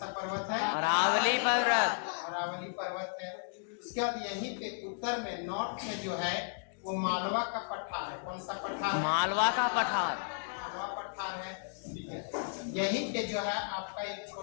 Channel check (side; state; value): right; silent; digital silence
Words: पर्वत है? अरावली पर्वत। अरावली पर्वत है। उसके बाद यहीं पे उत्तर में, नॉर्थ में जो है वो मालवा का पठार है। कौन सा पठार? मालवा का पठार। मालवा पठार है। ठीक है, यहीं पे जो है आपका एक